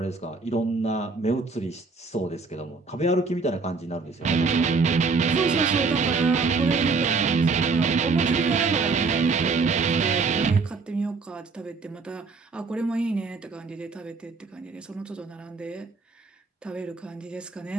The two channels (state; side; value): quieter; left; 4.3 dB